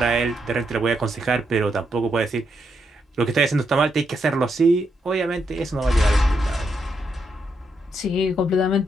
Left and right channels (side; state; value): both; normal; correlation 0.80